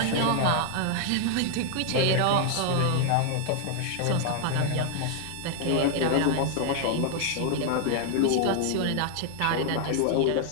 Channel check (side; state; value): both; different; correlation 0.00